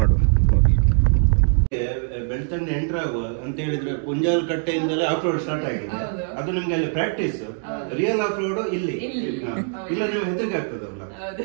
ಬೆಳ್ತಂಡಿ ಎಂಟರ್ ಆಗುವ ಅಂತ ಹೇಳಿದ್ರೆ ಪುಂಜಾಲ್ ಕಟ್ಟೆಯಿಂದಲೇ ಆಫ್ ರೋಡ್ ಸ್ಟಾರ್ಟ್ ಆಗಿದೆ. ಅದು ನಿಮ್ಗೆ ಅಲ್ಲಿ ಪ್ರಾಕ್ಟೀಸ್, ರಿಯಲ್ ಆಫ್ ರೋಡ್ ಇಲ್ಲಿ ಇಲ್ಲ. ನಿಮ್ಗೆ ಹೆದರಿಕೆ ಆಗ್ತದಲ್ಲ,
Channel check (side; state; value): left; silent; 60 dB below the other